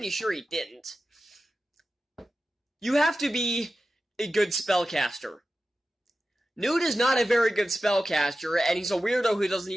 sure he didn't, you have to be a good spellcaster. Newt is not a very good spellcaster, and he's a weirdo who doesn't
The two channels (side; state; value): both; normal; correlation 0.93